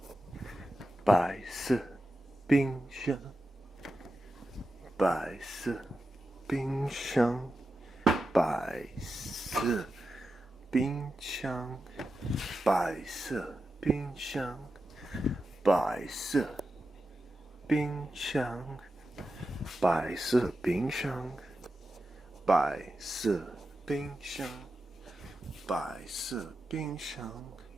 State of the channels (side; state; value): both; normal; correlation 0.90